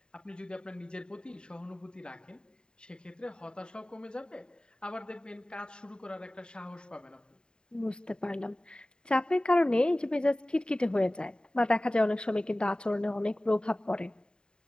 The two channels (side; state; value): right; late; 0.048 ms